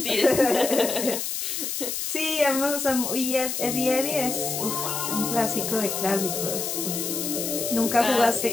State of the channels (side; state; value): left; noise; hiss, 3 dB below the sound